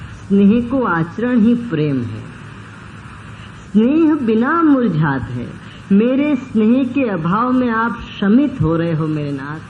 स्नेह को आचरण ही प्रेम है। स्नेह बिना मुरझात है। मेरे स्नेह के अभाव में आप शमित हो रहे हो मेरे नाथ,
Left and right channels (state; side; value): identical; both; correlation 1.00